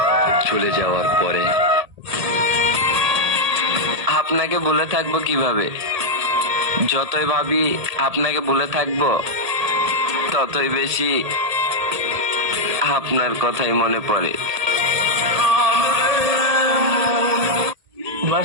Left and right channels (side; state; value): left; late; 1.8 ms